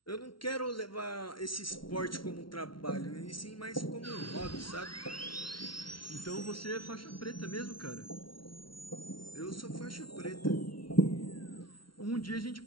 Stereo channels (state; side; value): late; right; 0.74 ms